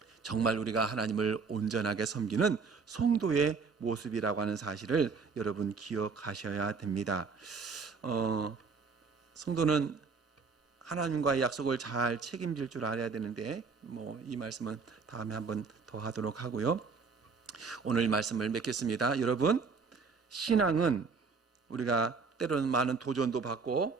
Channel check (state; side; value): quieter; left; 5.0 dB